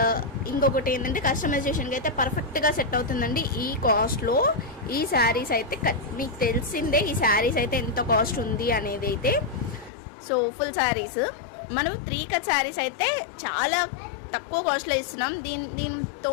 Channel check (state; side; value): drops out; right; at 9.9 s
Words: ఇంకొకటి ఏంటంటే కస్టమైజేషన్కి అయితే పర్ఫెక్ట్గా సెట్ అవుతుందండి. ఈ కాస్ట్లో ఈ శారీస్ అయితే మీకు తెలిసిందే, ఈ శారీస్ అయితే ఎంత కాస్ట్ ఉంది అనేది అయితే. సో ఫుల్ శారీస్ మనం 3 కట్ శారీస్ అయితే చాలా తక్కువ కాస్ట్లో ఇస్తున్నాం. దీంతో